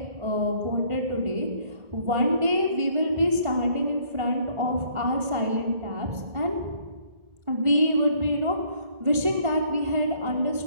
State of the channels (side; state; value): left; late; 1.5 ms